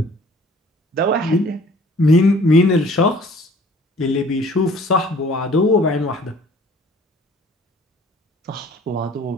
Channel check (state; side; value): normal; both; correlation 0.53